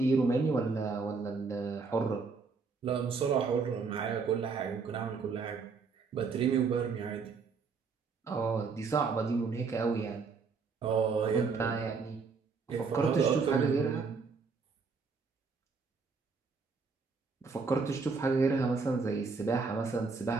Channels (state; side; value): quieter; left; 4.8 dB